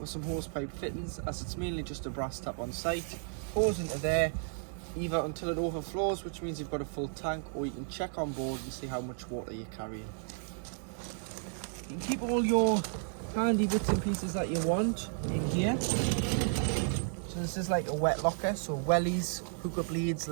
some hose pipe fittings, as it's mainly just a brass tap on site. Hose into there, either until it overflows, which means you've got a full tank, or you can check on board and see how much water you're carrying. You can keep all your handy bits and pieces that you want in here. So this is like a wet locker, so wellies, hookup leads,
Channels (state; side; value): silent; left; 56 dB below the other